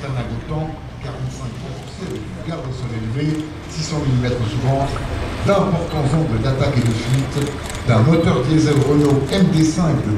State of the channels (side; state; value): both; identical; correlation 1.00